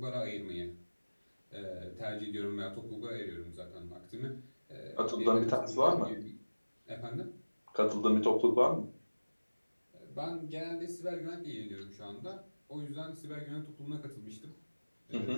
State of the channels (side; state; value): both; inverted; correlation -1.00